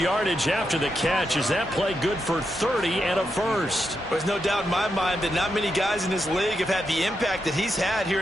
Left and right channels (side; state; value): both; normal; correlation 0.84